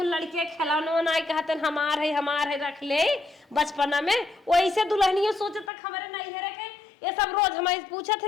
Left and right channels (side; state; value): right; drops out; at 5.7 s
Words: लड़के खिलौना ना कहते हमार है रख ले बचपना में वैसे दुल्हनियों सोचे तक हमारे नहीं है रखे ये सब रोज हमारे पूछा